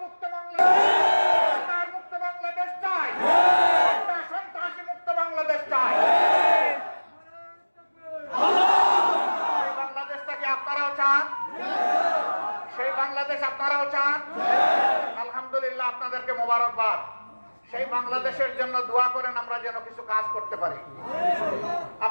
মুক্ত বাংলাদেশ চাই, একটা সন্ত্রাসী মুক্ত বাংলাদেশ চাই। সেই বাংলাদেশটাকে আপনারাও চান? সেই বাংলাদেশ আপনারাও চান? আলহামদুলিল্লাহ, আপনাদেরকে মোবারকবাদ। সেই বাংলাদেশের জন্য দোয়া করেন, আমরা যেন কিছু কাজ করতে পারি।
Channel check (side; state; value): both; inverted; correlation -1.00